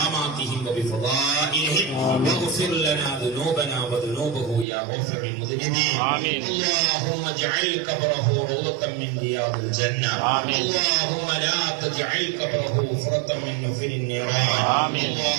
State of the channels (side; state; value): left; drops out; at 4.7 s